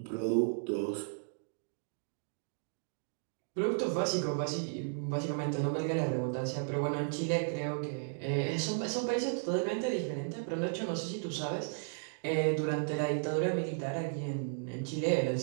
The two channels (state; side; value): silent; left; digital silence